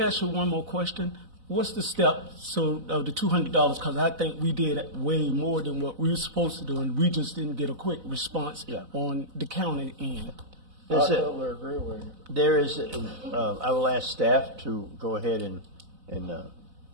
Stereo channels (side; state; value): left; late; 4.0 ms